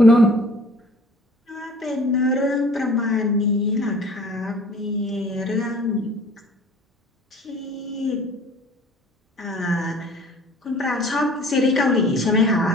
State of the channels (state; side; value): normal; both; correlation 0.49